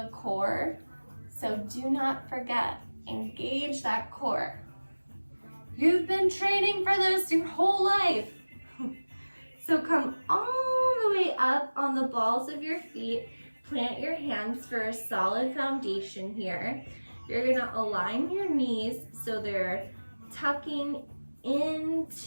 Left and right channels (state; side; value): inverted; both; correlation -1.00